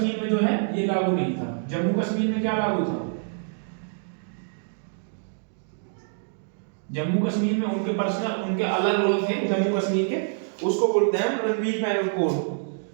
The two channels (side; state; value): left; silent; digital silence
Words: में जो है ये लागू नहीं था। जम्मू कश्मीर में क्या लागू था? जम्मू कश्मीर में उनके पर्सनल, उनके अलग लॉ थे जम्मू कश्मीर के, उसको बोलते हैं रणवीर पैनल कोड,